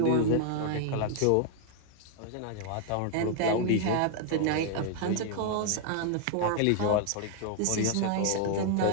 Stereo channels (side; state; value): both; different; correlation 0.00